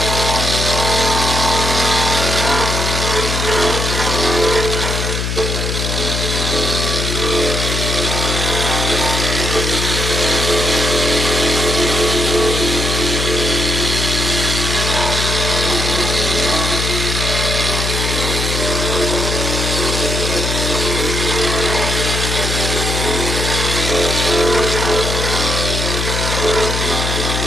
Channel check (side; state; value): left; noise; hum, 2 dB below the sound